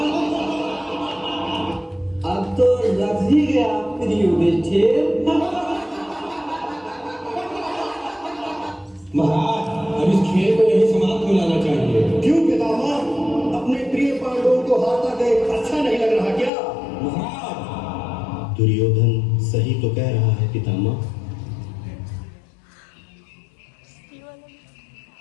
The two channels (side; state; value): right; drops out; at 16.5 s